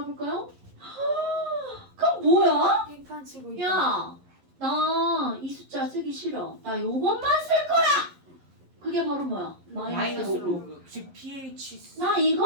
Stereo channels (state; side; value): late; left; 11 ms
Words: 그럼 뭐야? 빙판 치고 야, 나 이 숫자 쓰기 싫어. 나 요것만 쓸 거야. 그게 바로 뭐야? 마이너스 로그. 로그 즉 pH 나